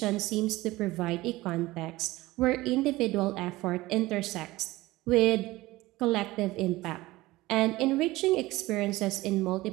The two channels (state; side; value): quieter; left; 19.0 dB